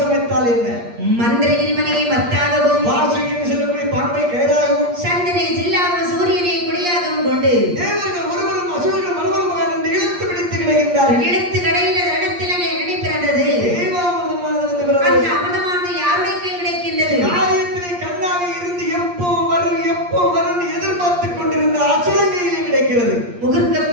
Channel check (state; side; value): late; left; 8.5 ms